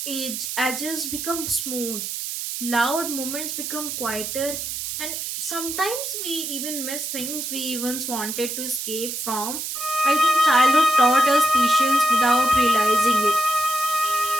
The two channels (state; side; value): noise; right; hiss, 5 dB below the sound